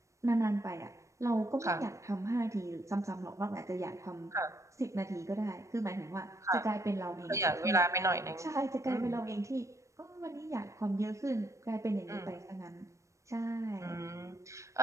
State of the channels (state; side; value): late; left; 0.15 ms